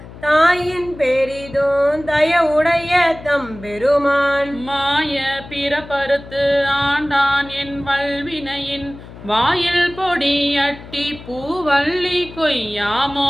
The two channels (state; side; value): noise; left; hum, 16 dB below the sound